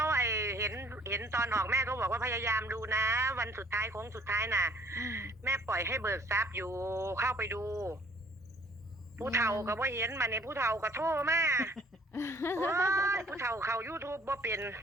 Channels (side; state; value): both; normal; correlation 0.57